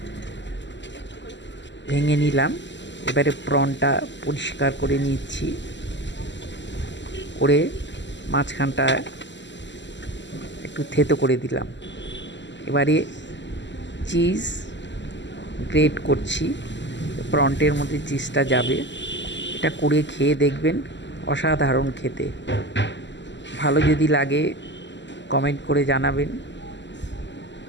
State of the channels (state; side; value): late; right; 0.53 ms